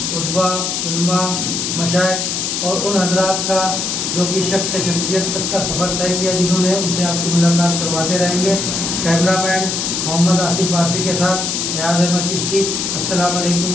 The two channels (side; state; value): left; noise; hiss, 1 dB below the sound